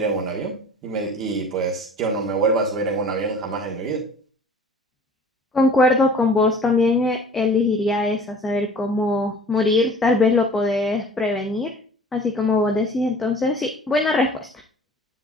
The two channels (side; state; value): both; normal; correlation 0.46